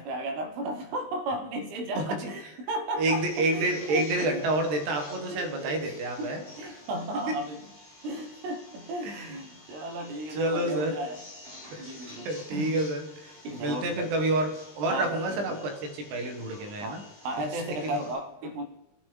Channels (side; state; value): left; late; 20 ms